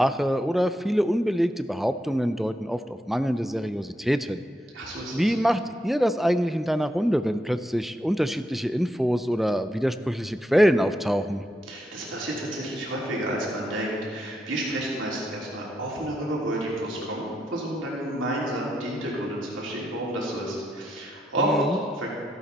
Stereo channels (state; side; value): normal; both; correlation 0.82